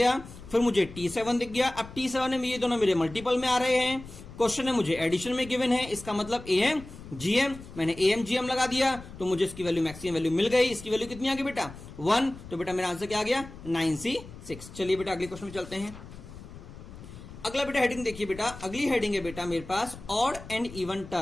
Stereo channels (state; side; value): noise; left; rumble, 15 dB below the sound